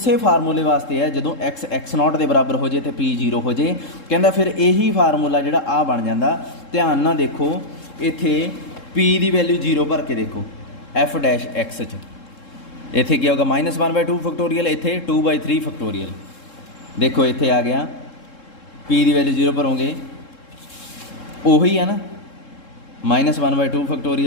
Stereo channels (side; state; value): right; late; 3.7 ms